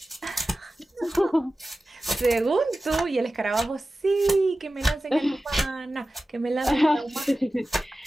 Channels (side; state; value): both; normal; correlation 0.95